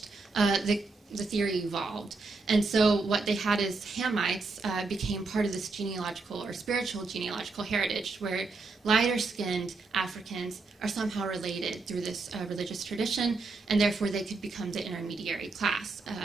the theory evolved. And so what they had is Hamites became part of this genealogical or spiritual genealogical heritage where lighter-skinned Africans are somehow related through this religious tradition, and therefore they could become the intermediary class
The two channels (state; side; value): quieter; left; 3.8 dB